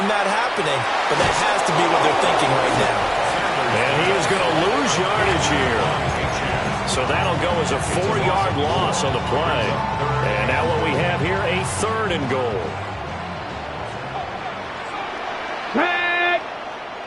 that happening, but that has to be what they're thinking right now. And he is going to lose yardage here. So that'll go as a 4-yard loss on the play. And now what we have here, a 3rd and goal. Tag!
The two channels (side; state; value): both; identical; correlation 1.00